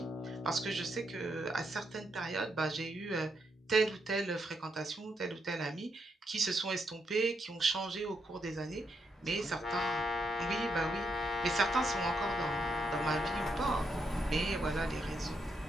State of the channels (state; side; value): normal; both; correlation 0.80